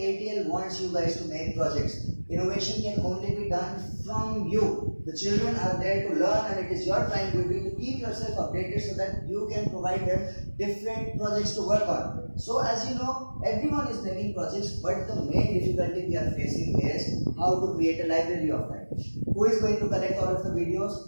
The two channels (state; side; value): inverted; both; correlation -1.00